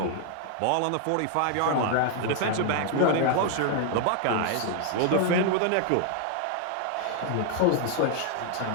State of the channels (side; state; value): both; different; correlation 0.00